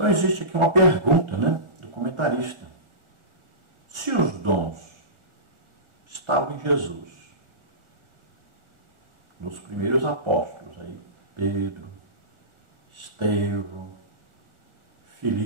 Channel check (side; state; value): left; late; 1.4 ms